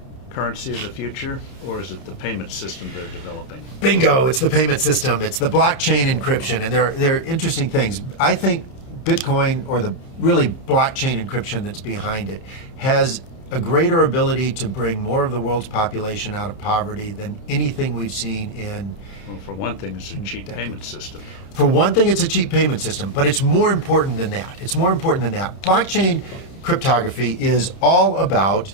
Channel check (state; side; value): late; right; 30 ms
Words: currency of the future, or is it the payment system they're developing? Bingo, it's the payment system. It's the blockchain encryption, and they're interesting things. I think Bitcoin, or the really blockchain encryption that's behind it, has a greater ability to bring more of the world's population out of poverty than anything we've seen in... Well, for one thing, it's a cheap payment system. For one thing, it's a cheap payment system, but it's more important than that. It's more important than that. Blockchain cryptography is all about